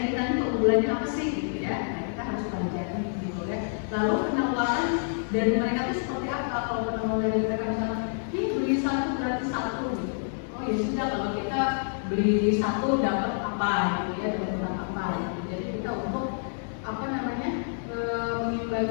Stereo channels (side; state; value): right; silent; digital silence